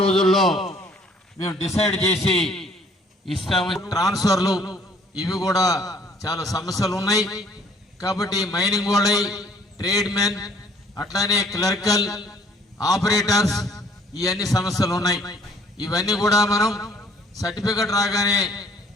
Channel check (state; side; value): normal; both; correlation 0.59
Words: మేము డిసైడ్ చేసి ఇస్తాము. ట్రాన్స్ఫర్లు ఇవి కూడా చాలా సమస్యలు ఉన్నాయి కాబట్టి మైనింగ్ వాళ్ళై, ట్రేడ్ మెన్, అట్లానే క్లర్కల్, ఆపరేటర్స్ ఇవన్నీ సమస్యలు ఉన్నాయి. ఇవన్నీ కూడా మనం సర్టిఫికెట్ రాగానే